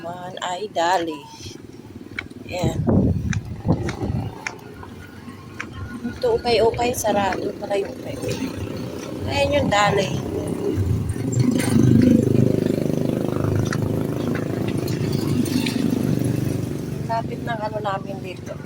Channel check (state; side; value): identical; both; correlation 1.00